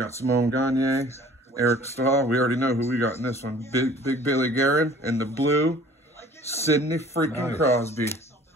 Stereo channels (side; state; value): both; normal; correlation 0.50